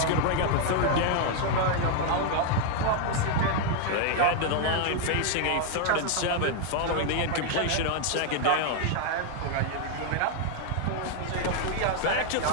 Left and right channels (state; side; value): different; both; correlation 0.00